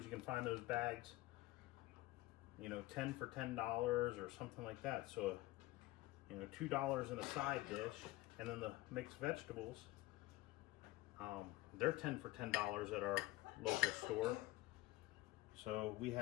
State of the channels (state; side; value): quieter; right; 18.3 dB